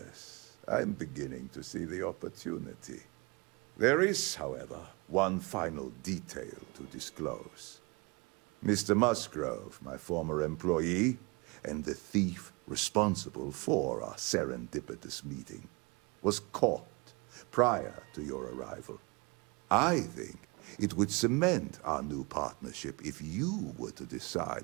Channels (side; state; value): left; quieter; 27.9 dB